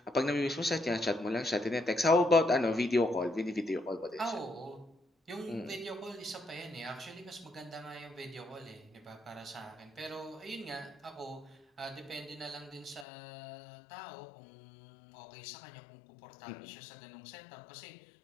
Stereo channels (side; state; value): right; drops out; at 13.1 s